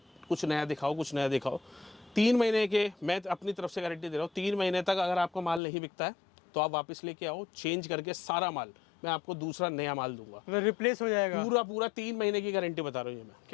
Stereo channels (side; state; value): right; drops out; at 5.6 s